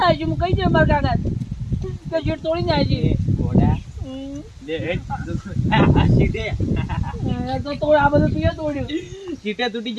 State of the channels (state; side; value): identical; both; correlation 1.00